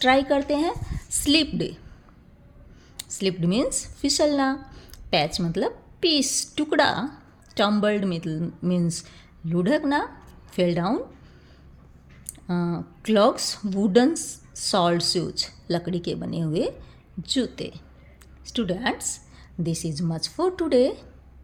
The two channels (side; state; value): both; identical; correlation 1.00